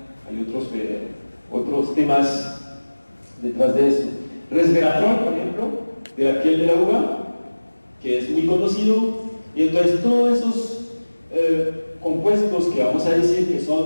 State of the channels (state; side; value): inverted; both; correlation -1.00